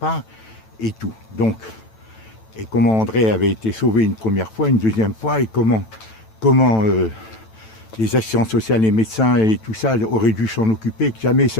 et tout. Donc, et comment André avait été sauvé une première fois, une deuxième fois, et comment les assistantes sociales, les médecins et tout ça auraient dû s'en occuper, que jamais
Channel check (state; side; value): late; right; 9.0 ms